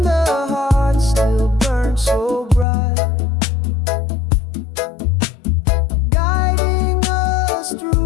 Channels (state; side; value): drops out; right; at 2.7 s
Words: the heart still burns so bright, guiding us